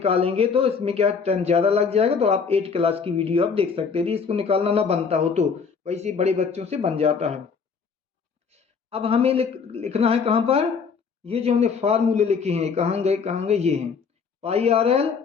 तो इसमें क्या टाइम ज़्यादा लग जाएगा, तो आप 8 क्लास की वीडियो आप देख सकते हैं। यदि इसको निकालना ना बनता हो तो वैसे बड़े बच्चों से बन जाता है। अब हमें लिखना है कहाँ पर, ये जो हमने फार्मूले लिखे हैं कहाँ गए, ये हैं पाई आर एल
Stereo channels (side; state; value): right; quieter; 5.7 dB